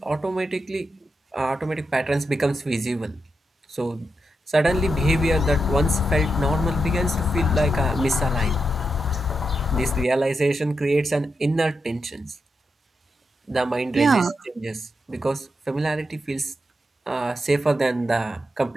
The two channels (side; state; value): both; normal; correlation 0.86